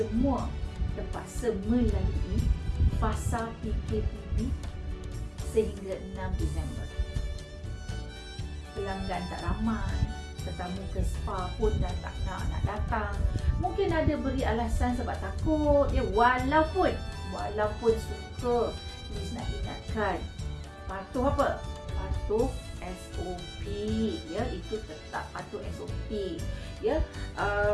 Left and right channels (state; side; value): identical; both; correlation 1.00